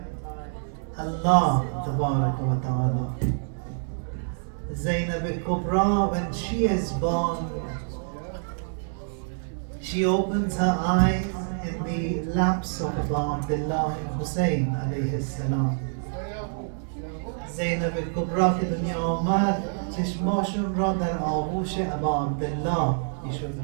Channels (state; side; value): silent; left; digital silence